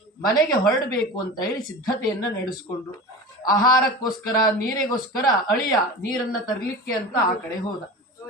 ಮನೆಗೆ ಹೊರಡಬೇಕು ಅಂತ ಹೇಳಿ ಸಿದ್ಧತೆಯನ್ನ ನಡೆಸಿಕೊಂಡ್ರು. ಆಹಾರಕ್ಕೋಸ್ಕರ, ನೀರಿಗೋಸ್ಕರ ಅಳಿಯ ನೀರನ್ನ ತರಲಿಕ್ಕೆ ಅಂತ ಆ ಕಡೆ ಹೋದ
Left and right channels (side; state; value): both; normal; correlation 0.32